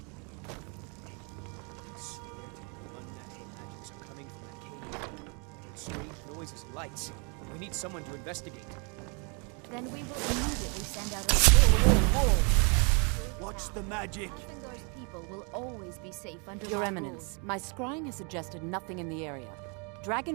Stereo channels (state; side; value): quieter; left; 34.8 dB